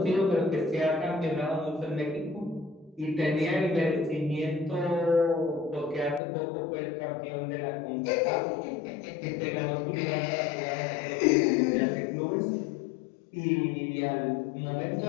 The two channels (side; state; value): right; drops out; at 6.2 s